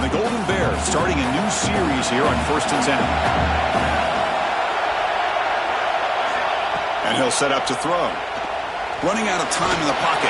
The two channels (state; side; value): identical; both; correlation 1.00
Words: the Golden Bears starting a new series here on 1st and 10. And he'll set up to throw. Running out of time in the